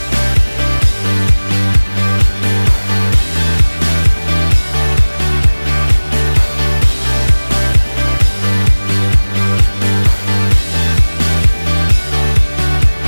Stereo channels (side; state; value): both; inverted; correlation -1.00